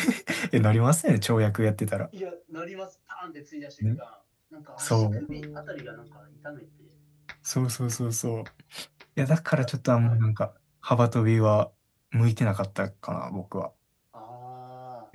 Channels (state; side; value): identical; both; correlation 1.00